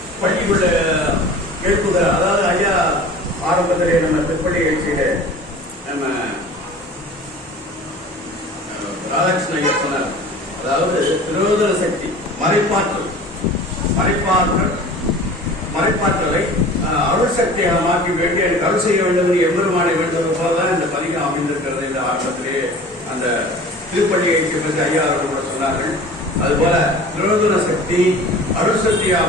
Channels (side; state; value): both; normal; correlation 0.42